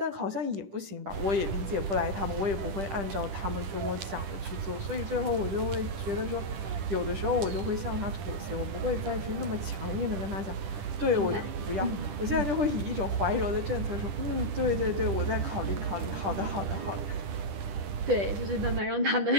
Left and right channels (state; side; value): late; left; 10 ms